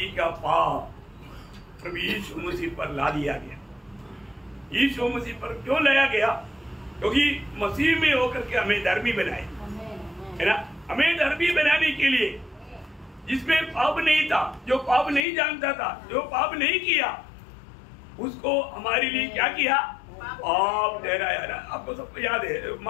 का पाप प्रभु यीशु मसीह पर ला दिया गया। यीशु मसीह पर क्यों लाया गया? क्योंकि मसीह में होकर के हमें धर्मी बनाए, है ना। हमें धर्मी बनाने के लिए, जिसमें पाप नहीं था, जो पाप नहीं जानता था, जो पाप नहीं किया, उसको हमारे लिए क्या किया? पाप ठहराया ना। आपको सबको याद है,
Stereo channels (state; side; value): drops out; right; at 15.2 s